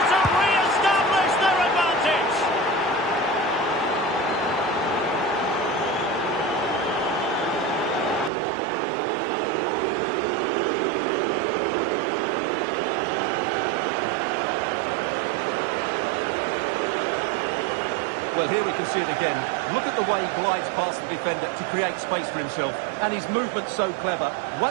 to re-establish their advantage. Well, here we can see it again. Look at the way he glides past the defender to create space for himself. And his movement's so clever.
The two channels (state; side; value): drops out; left; at 8.3 s